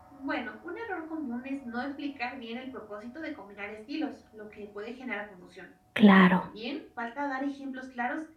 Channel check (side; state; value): both; identical; correlation 1.00